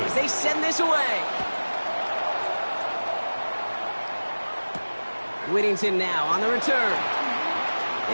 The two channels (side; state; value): both; inverted; correlation -1.00